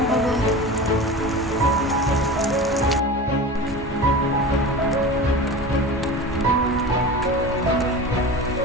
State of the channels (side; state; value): both; normal; correlation 0.32